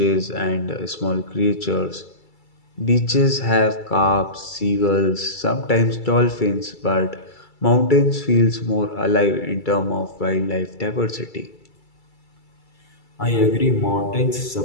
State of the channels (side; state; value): right; late; 2.3 ms